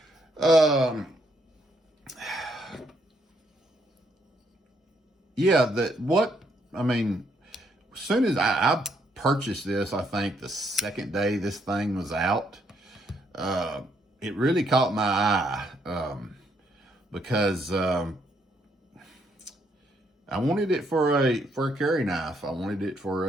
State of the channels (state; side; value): normal; both; correlation 0.72